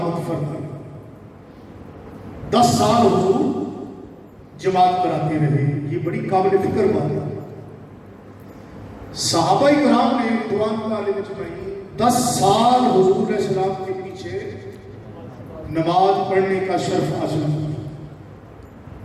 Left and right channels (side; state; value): both; identical; correlation 1.00